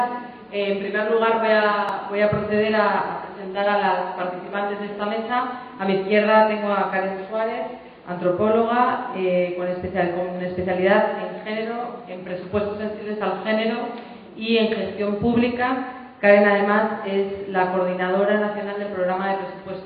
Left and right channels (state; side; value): identical; both; correlation 1.00